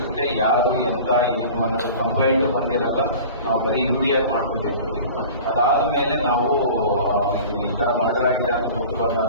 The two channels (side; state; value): both; inverted; correlation -0.40